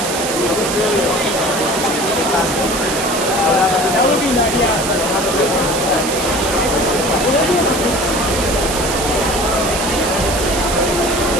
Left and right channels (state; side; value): noise; right; hiss, 4 dB below the sound